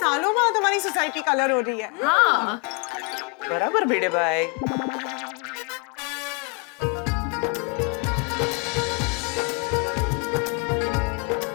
बाद हमारी सोसाइटी कलर हो रही है। हाँ बराबर भिड़े भाई।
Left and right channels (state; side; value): quieter; right; 32.3 dB